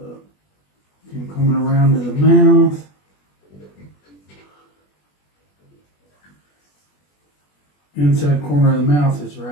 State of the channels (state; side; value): late; right; 21 ms